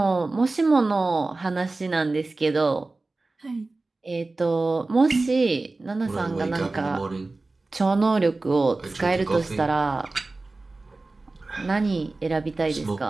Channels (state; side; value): quieter; left; 3.3 dB